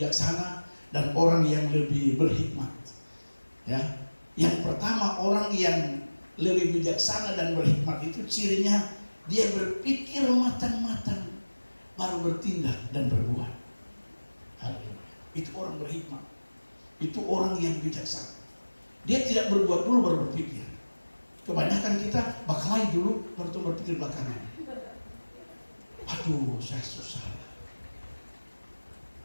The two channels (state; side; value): inverted; both; correlation -1.00